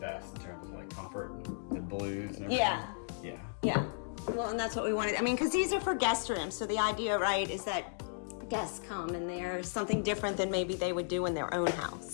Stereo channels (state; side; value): silent; right; digital silence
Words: in terms of like comfort, the blues and everything. Yeah. Well, and that's what we wanted. I mean, because these are for guest rooms. So the idea, right, is that guests come and there's something different than maybe they would do in their own house.